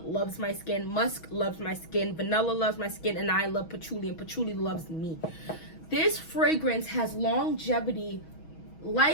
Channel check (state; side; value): late; right; 6.2 ms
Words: loves my skin. Musk loves my skin. Vanilla loves my skin. And I love patchouli. And patchouli loves me. This fragrance has longevity